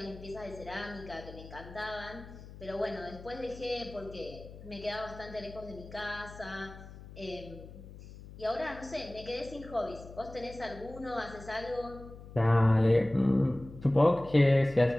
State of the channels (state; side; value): noise; left; hum, 16 dB below the sound